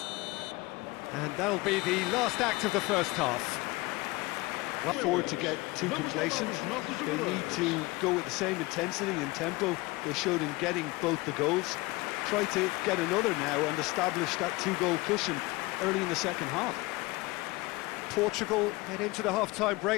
And that'll be the last act of the first half. Forward to get too complacent. They need to go with the same intensity and tempo they showed in getting both the goals. Try to get another now and establish that two-goal cushion early in the second half. Portugal head into the half-time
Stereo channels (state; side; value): quieter; right; 22.4 dB